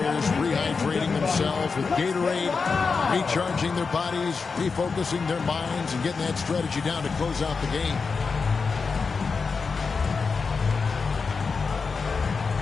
rehydrating themselves with Gatorade, recharging their bodies, refocusing their minds, and getting that strategy down to close out the game.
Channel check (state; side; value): quieter; right; 4.9 dB